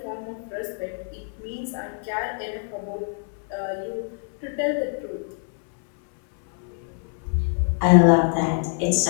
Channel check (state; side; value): silent; right; 62 dB below the other